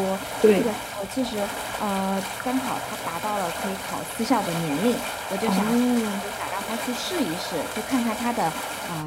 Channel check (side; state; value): both; identical; correlation 1.00